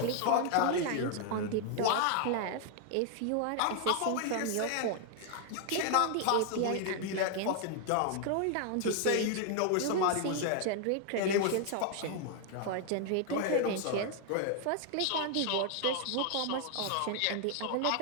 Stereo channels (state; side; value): different; both; correlation 0.00